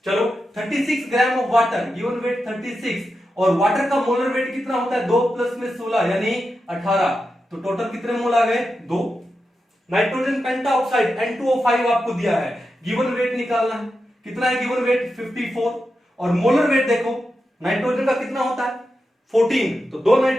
चलो 36 gram of water, given weight 36, और वाटर का मोलर वेट कितना होता है? 2 प्लस में 16 यानी 18, तो टोटल कितने मोल आ गए? 2। नाइट्रोजन पेंटाऑक्साइड N2O5 आपको दिया है, गिवन वेट निकालना है। कितना है गिवन वेट? 54, और मोलर वेट देखो, नाइट्रोजन का कितना होता है? 14, तो 2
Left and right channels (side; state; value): both; normal; correlation 0.89